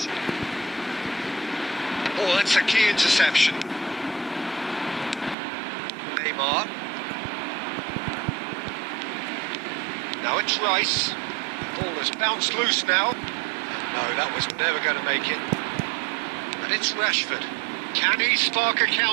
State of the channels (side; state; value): left; drops out; at 5.4 s